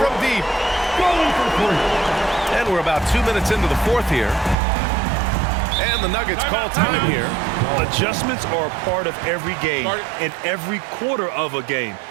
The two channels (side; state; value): left; drops out; at 4.5 s